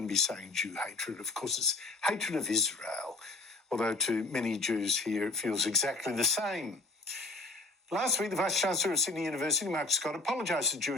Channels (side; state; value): right; quieter; 3.1 dB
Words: be saying Jew hatred, of course it's hatred of Israel, although to many Jews here it feels exactly the same. Last week, the Vice-Chancellor of Sydney University, Mark Scott, apologised to